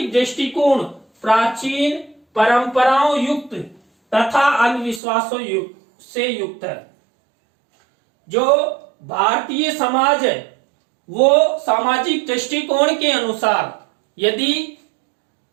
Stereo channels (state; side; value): drops out; left; at 5.0 s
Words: दृष्टिकोण प्राचीन परंपराओं युक्त तथा अंधविश्वासों से युक्त है। जो भारतीय समाज है वो सामाजिक दृष्टिकोण के अनुसार यदि